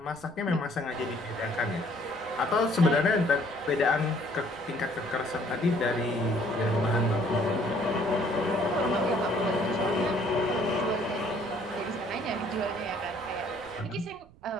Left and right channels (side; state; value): right; noise; rumble, 25 dB below the sound